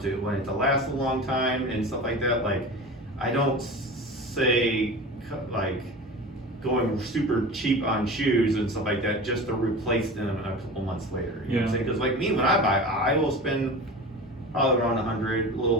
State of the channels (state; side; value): normal; both; correlation 0.33